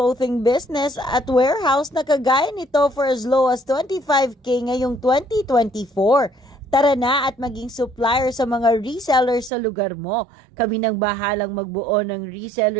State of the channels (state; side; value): drops out; left; at 9.5 s